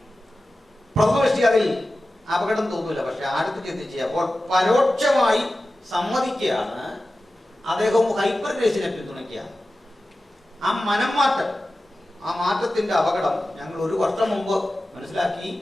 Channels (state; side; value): normal; both; correlation 0.95